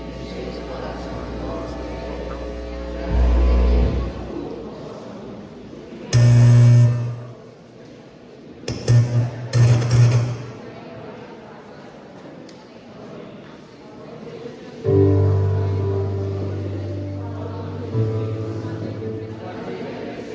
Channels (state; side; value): identical; both; correlation 1.00